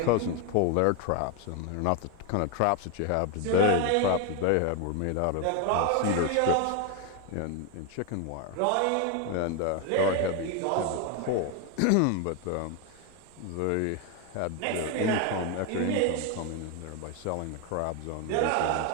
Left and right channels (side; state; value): both; different; correlation 0.01